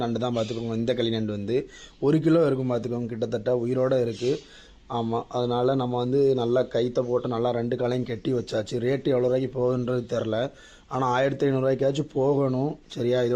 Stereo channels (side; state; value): both; identical; correlation 1.00